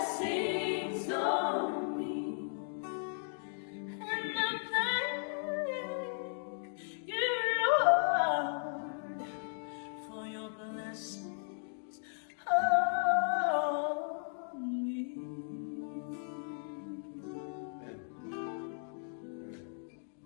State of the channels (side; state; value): right; silent; digital silence